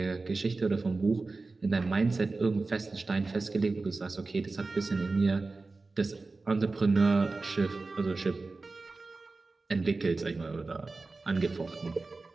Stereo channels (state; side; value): quieter; left; 3.7 dB